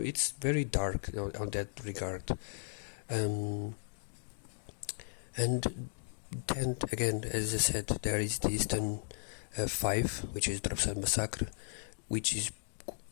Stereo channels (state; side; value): silent; right; digital silence